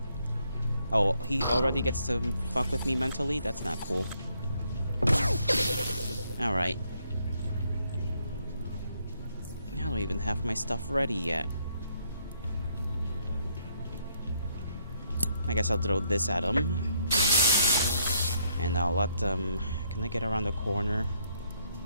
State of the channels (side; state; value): both; inverted; correlation -0.72